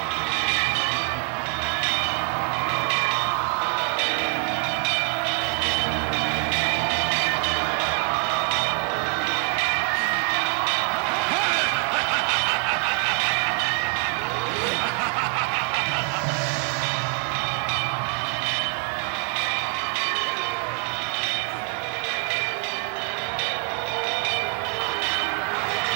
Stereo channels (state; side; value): quieter; left; 31.1 dB